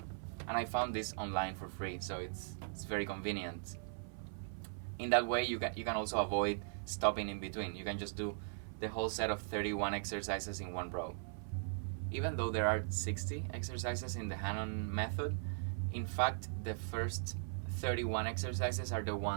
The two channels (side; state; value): left; silent; 52 dB below the other